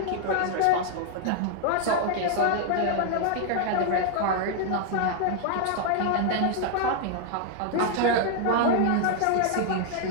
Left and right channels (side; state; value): both; different; correlation 0.00